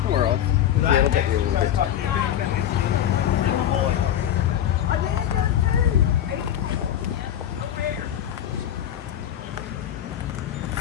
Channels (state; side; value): quieter; right; 10.8 dB